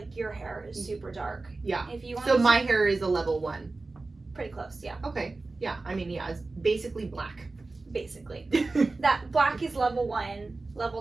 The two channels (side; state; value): left; quieter; 3.5 dB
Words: your hair is super dark. Yeah. If you want so my hair is a level 1. Pretty close, yeah. Okay. Yeah. I mean, yeah, it's basically black. Basically. That black is level 1. Level